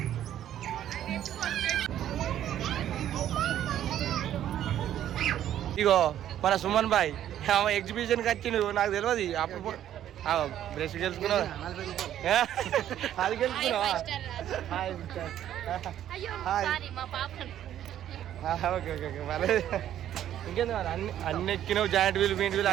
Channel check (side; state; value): left; quieter; 11.3 dB